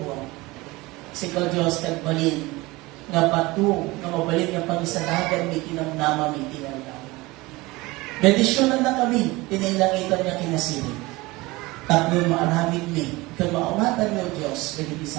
Sikaw Diyos kagbalin nga patu nga mabalin nga pangisadagan mi tinamnama mi tinamnama. Bendisyonan na kami, tinailangitan niya kinasiling. Tapnon maaramid mi, kag maawatan niyo Diyos, dagiti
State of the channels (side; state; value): left; quieter; 21.7 dB